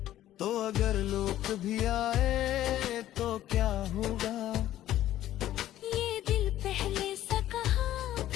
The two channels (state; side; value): quieter; right; 13.2 dB